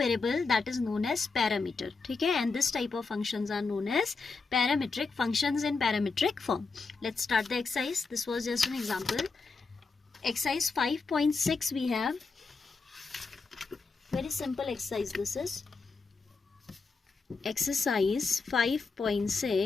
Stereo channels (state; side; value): quieter; right; 4.3 dB